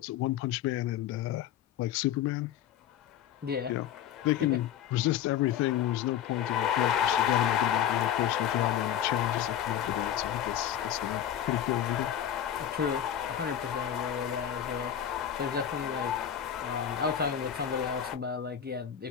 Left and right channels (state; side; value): quieter; right; 10.0 dB